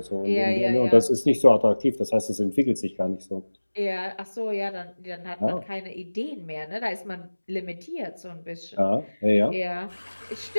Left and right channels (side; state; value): both; inverted; correlation -1.00